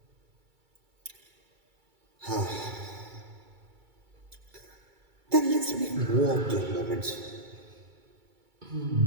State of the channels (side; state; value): left; late; 2.3 ms